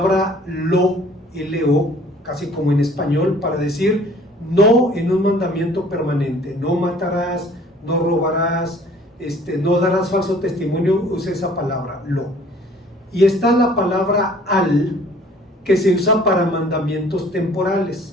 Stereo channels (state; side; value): normal; both; correlation 0.53